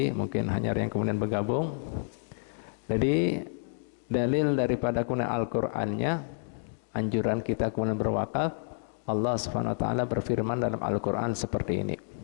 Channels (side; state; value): right; silent; digital silence